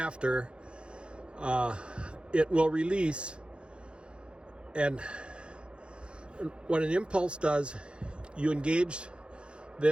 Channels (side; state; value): left; late; 0.055 ms